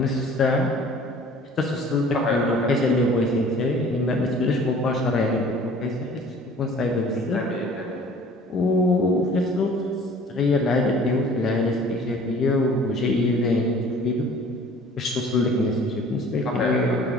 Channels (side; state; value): both; normal; correlation 0.49